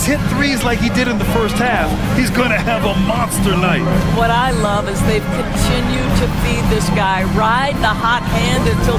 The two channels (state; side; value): identical; both; correlation 1.00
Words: hit threes like he did in the first half, he's going to have a monster night. What I love is they've continued to feed this guy, ride the hot hand until